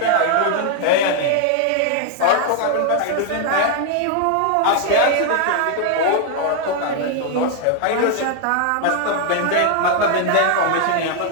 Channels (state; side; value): different; both; correlation 0.00